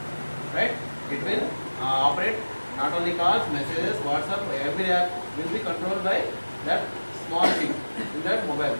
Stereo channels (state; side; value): inverted; both; correlation -1.00